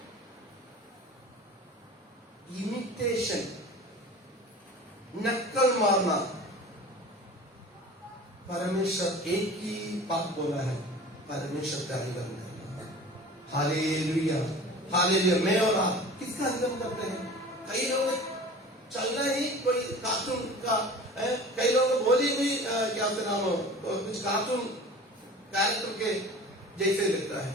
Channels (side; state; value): both; normal; correlation 0.40